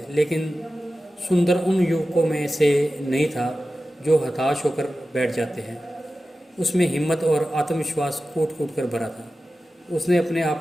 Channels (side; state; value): both; normal; correlation 0.94